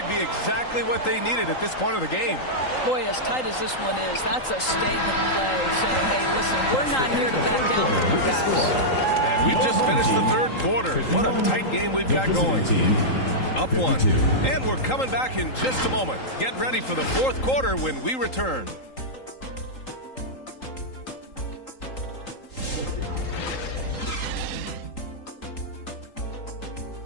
be exactly what they needed at this point of the game. Boy, as tight as this one is, that's a statement play saying, hey, listen, we're not here to back down from you guys. And we've just finished the third quarter. What a tight game we've got going. Up 1. And we're coming back in just a moment. Get ready for the fourth quarter when we return.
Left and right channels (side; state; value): right; late; 3.8 ms